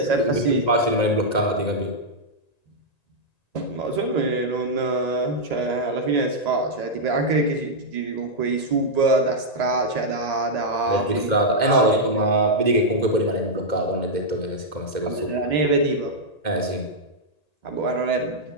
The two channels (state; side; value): late; right; 1.9 ms